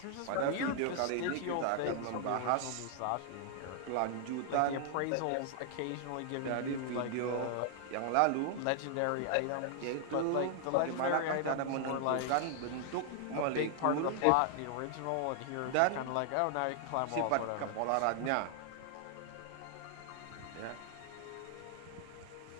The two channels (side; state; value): both; different; correlation 0.00